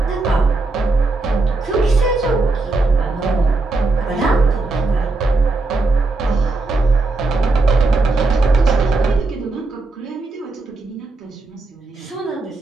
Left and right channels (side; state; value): left; quieter; 3.3 dB